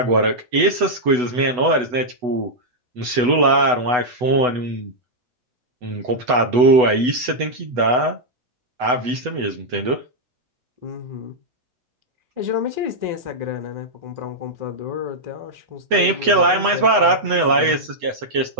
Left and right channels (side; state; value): left; late; 8.1 ms